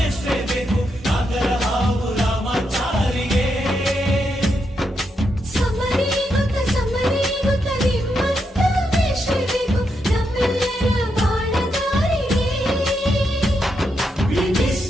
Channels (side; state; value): both; normal; correlation 0.82